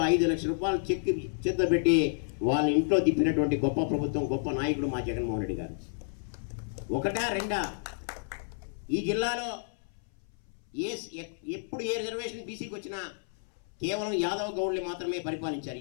5 లక్షల రూపాయలు చెక్ చేతిలో పెట్టి వాళ్ళ ఇంట్లో తిప్పినటువంటి గొప్ప ప్రభుత్వం, గొప్ప నాయకుడు మా జగన్మోహన్ రెడ్డి గారు. ఒకటా రెండా, ఈ జిల్లాలో ఎప్పుడు ఏ రిజర్వేషన్ బీసీకి వచ్చినా కేవలం యాదవ్ గౌడ్లు మాత్రమే పరిపాలించారు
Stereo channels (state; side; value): silent; right; 57 dB below the other